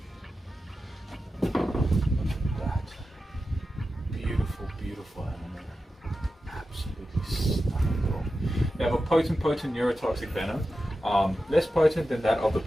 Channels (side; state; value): both; normal; correlation 0.92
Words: Look at that. Beautiful animal. Absolutely stunning. They have a potent neurotoxic venom. Less potent than that of the